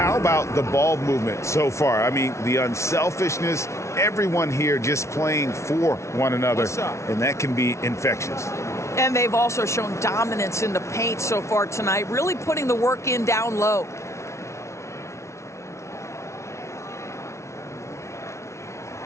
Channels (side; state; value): right; late; 0.13 ms